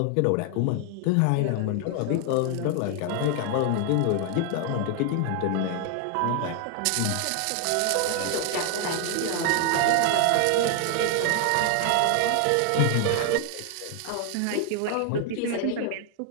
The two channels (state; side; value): different; both; correlation 0.00